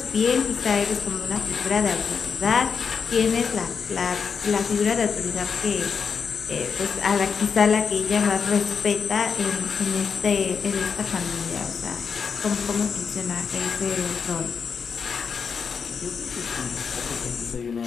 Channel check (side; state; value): right; quieter; 6.1 dB